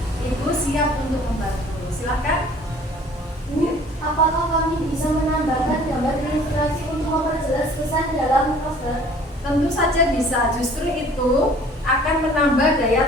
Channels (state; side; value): normal; both; correlation 0.52